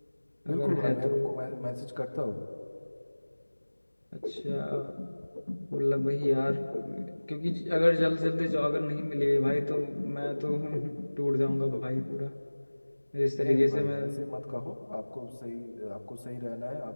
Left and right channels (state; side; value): inverted; both; correlation -1.00